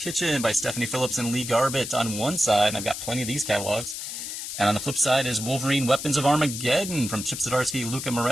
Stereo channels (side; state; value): left; noise; hiss, 7 dB below the sound